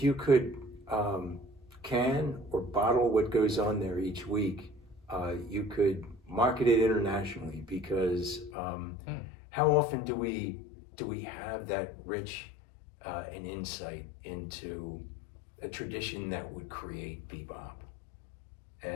can or bottle what goes on there each week, you could market it internationally because how often do we have that rich an insight into a tradition that would create bebop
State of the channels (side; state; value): right; drops out; at 8.5 s